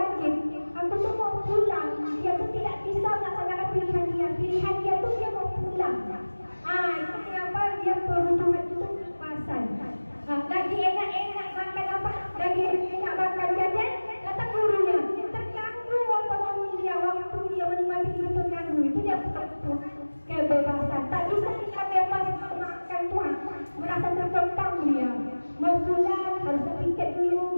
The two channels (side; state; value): both; inverted; correlation -1.00